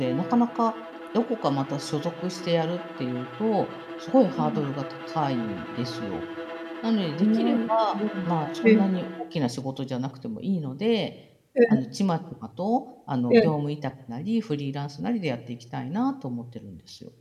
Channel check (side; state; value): both; identical; correlation 1.00